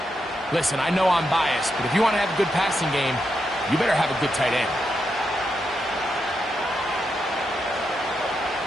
listen, I know I'm biased, but if you want to have a good passing game, you better have a good tight end.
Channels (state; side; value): normal; both; correlation 0.84